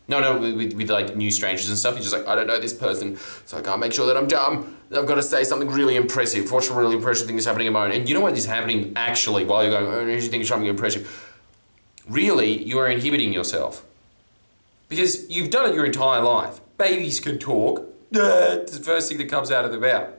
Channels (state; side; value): inverted; both; correlation -1.00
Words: With like new strangers and stuff. You're just like, I don't know this person, so I can't make sure that I'm dumb. I've got to say something really impressive. What's a really impressive thing that's happening at the moment? And you know what is happening actually while you're going, oh, you think it's something impressive? Really, you are inhibiting yourself. Because you've done it your entire life. Babies can talk. It's the first thing that comes out of their mouth.